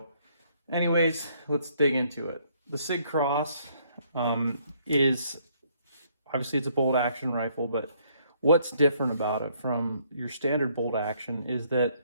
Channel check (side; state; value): both; inverted; correlation -0.67